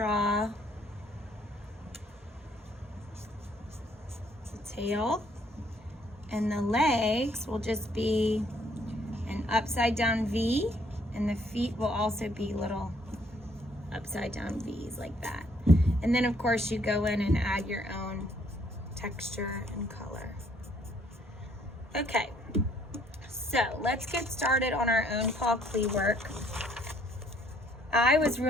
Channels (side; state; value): both; normal; correlation 0.65